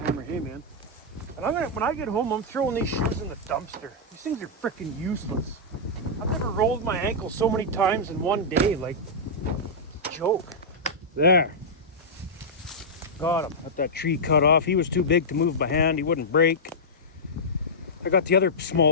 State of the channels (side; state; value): both; normal; correlation -0.10